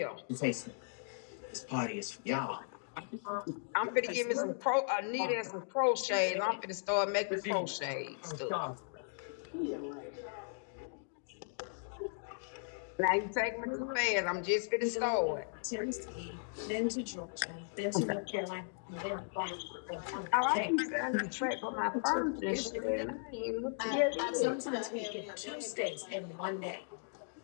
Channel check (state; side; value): silent; right; digital silence